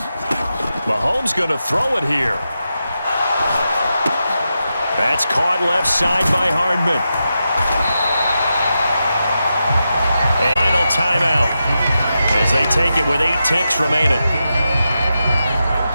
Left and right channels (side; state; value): both; inverted; correlation -0.88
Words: Mahomes going to throw it here. That's caught left side by Hardman. And final timeout as they take it with 8 ticks remaining.